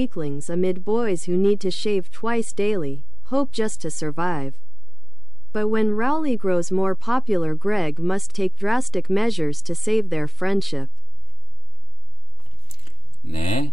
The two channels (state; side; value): normal; both; correlation 0.97